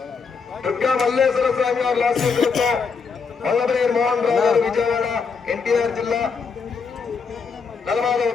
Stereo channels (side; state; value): right; quieter; 5.3 dB